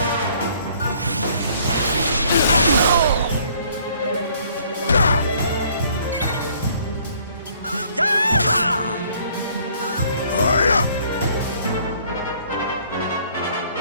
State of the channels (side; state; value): both; inverted; correlation -0.60